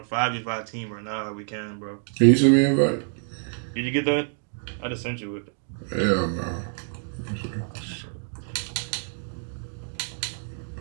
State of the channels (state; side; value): silent; left; 60 dB below the other